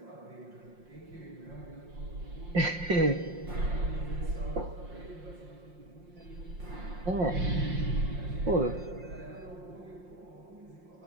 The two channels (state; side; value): late; left; 5.6 ms